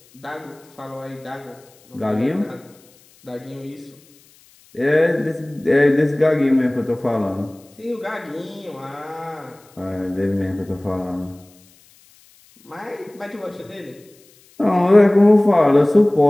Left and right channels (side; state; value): left; noise; hiss, 29 dB below the sound